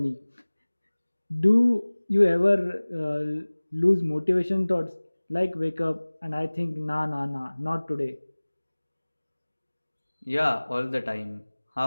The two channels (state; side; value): inverted; both; correlation -1.00